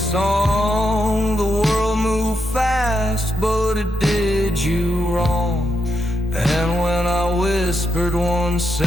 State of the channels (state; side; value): normal; both; correlation 0.83